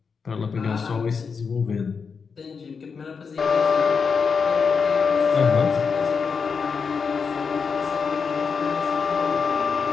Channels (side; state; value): right; quieter; 5.6 dB